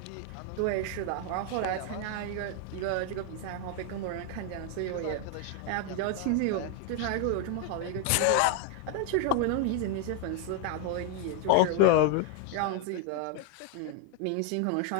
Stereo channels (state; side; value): different; both; correlation 0.01